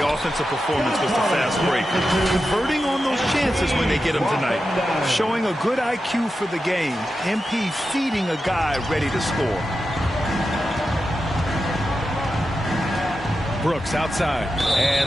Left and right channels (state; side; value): normal; both; correlation 0.90